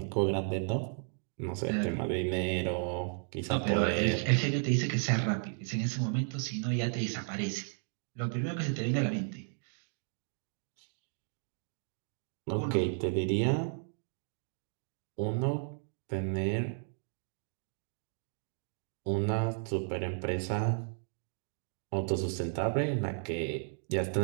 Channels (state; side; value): silent; left; 55 dB below the other